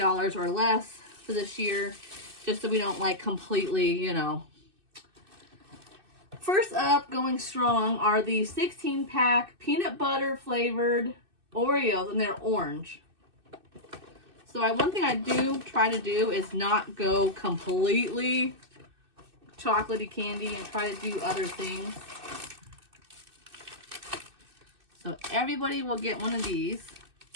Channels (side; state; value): left; late; 2.6 ms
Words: or less for this year, just so we don't like completely, you know. First up, going strong, are the 16-pack peanut butter flavored Oreos, and they're orange. So one thing I do try to do is not go completely chocolatey candy and try to do other things. So everybody will get one of these.